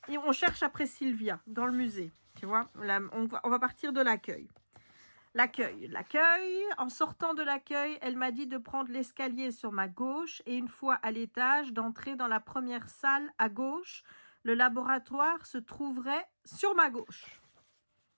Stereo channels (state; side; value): inverted; both; correlation -1.00